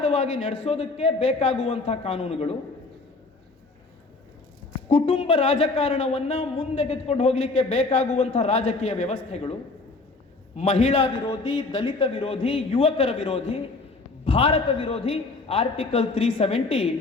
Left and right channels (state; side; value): quieter; right; 3.6 dB